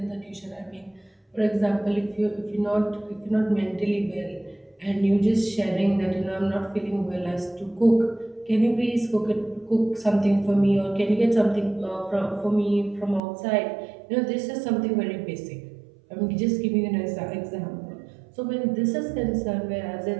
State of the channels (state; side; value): drops out; left; at 13.2 s